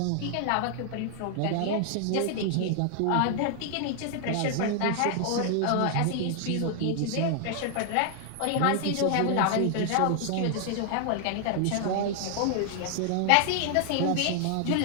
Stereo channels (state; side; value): different; both; correlation 0.00